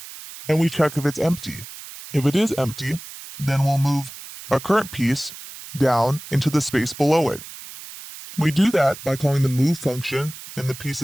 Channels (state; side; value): noise; right; hiss, 14 dB below the sound